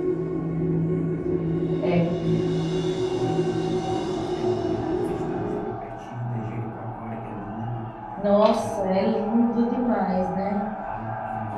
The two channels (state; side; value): identical; both; correlation 1.00